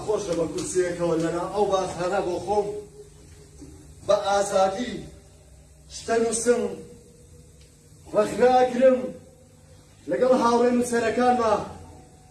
خۆشە بە کورسیەکەوە لەنا ئەو باسهانە بۆ خۆم بە ئازادی شتە نووسم ڕەخناگرم لەگەڵ هاوڕێ نووسەرەکانمە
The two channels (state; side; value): identical; both; correlation 1.00